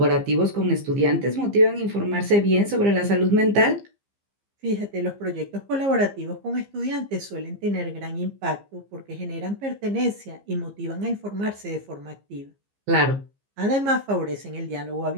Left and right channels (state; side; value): late; left; 15 ms